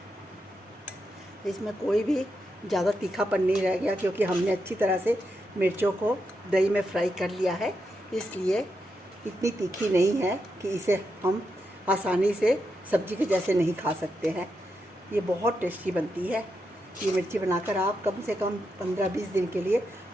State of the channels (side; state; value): both; normal; correlation 0.84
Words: इसमें कोई भी ज़्यादा तीखापन नहीं रह गया, क्योंकि हमने अच्छी तरह से मिर्चों को दही में फ्राई कर लिया है। इसलिए इतनी तीखी नहीं है कि इसे हम आसानी से सब्जी के जैसे नहीं खा सकते हैं। ये बहुत टेस्टी बनती है। ये मिर्ची बनाकर आप कम से कम 15-20 दिन के लिए